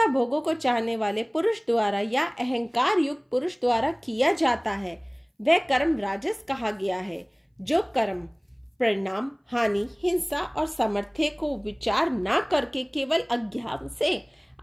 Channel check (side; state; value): both; identical; correlation 1.00